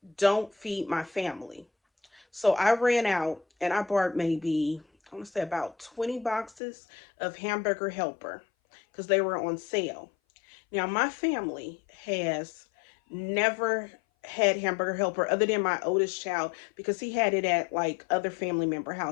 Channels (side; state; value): right; drops out; at 6.6 s